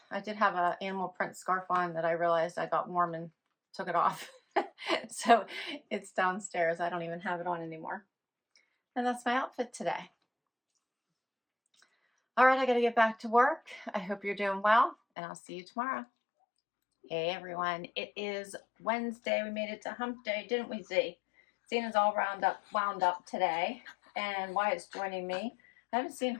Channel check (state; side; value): drops out; right; at 15.0 s